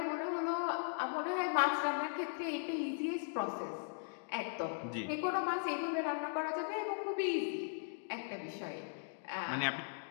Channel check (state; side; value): silent; right; digital silence